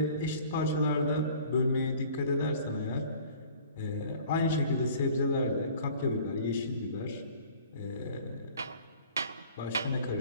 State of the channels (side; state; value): both; inverted; correlation -0.49